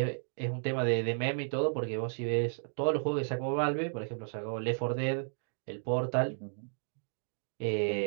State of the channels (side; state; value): left; silent; digital silence